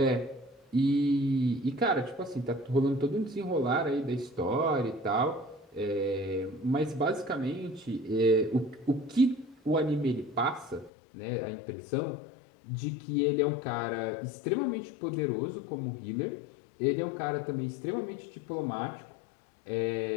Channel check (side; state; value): right; drops out; at 10.9 s